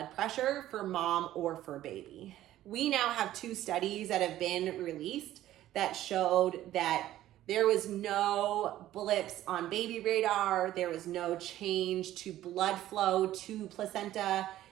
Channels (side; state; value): left; quieter; 13.7 dB